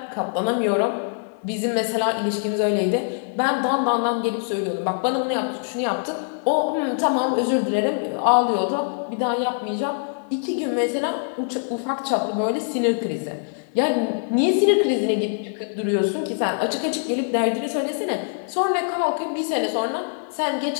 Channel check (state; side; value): silent; right; 63 dB below the other